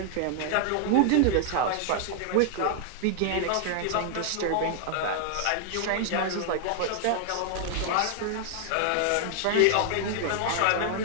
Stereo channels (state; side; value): different; both; correlation 0.00